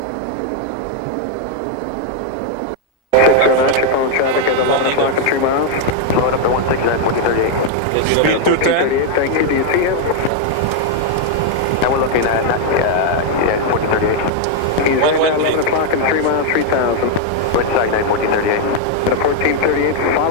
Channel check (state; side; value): normal; both; correlation 0.00